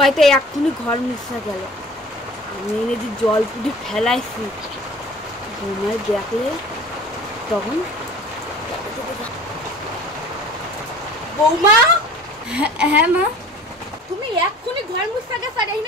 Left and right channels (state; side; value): normal; both; correlation 0.44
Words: এক্ষুনি ঘর মুছা গেল, আমি এনে যে জল পুটি ফেলাইছি, বৌমায় দেখলে তখন বৌমা। হ্যাঁ মা, তুমি এক্ষুনি ঘর মুছা গেছ আর